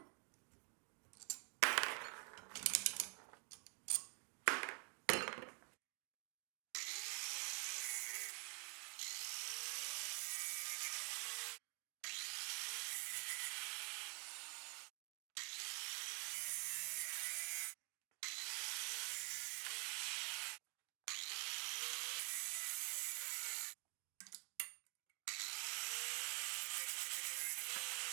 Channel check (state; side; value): quieter; left; 33.7 dB